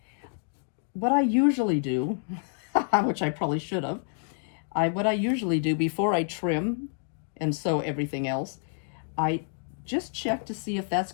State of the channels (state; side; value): silent; right; digital silence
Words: What I usually do, which I probably should have, what I usually do before I trim and sew everything else, I just check to see if that's